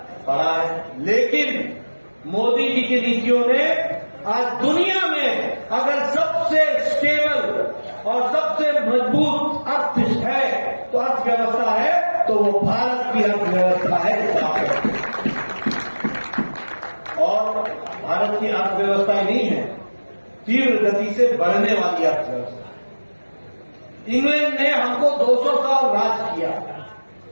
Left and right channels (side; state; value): both; inverted; correlation -1.00